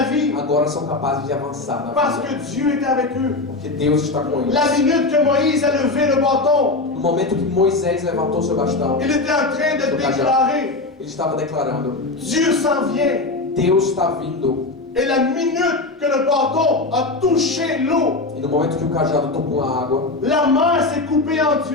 vie. agora são capazes de avançar na Parce vida. que Dieu est avec eux. Porque Deus está com eles. La minute que Moïse a levé le bâton, No momento que Moisés levantou seu bastão, il était en train de déclarer, ele estava declarando: Dieu s'en vient. Deus está vindo. Et la minute que le bâton a touché l'eau, E no momento que o cajado tocou a água, la mer s'est coupée en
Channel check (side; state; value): right; quieter; 3.3 dB